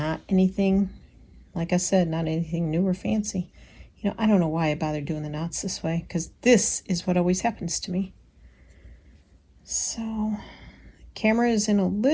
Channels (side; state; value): both; identical; correlation 1.00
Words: anything, like I said, not anything new or fancy. I don't know why I bothered doing the knots this way, because this is what always happens to me. So, camera is in a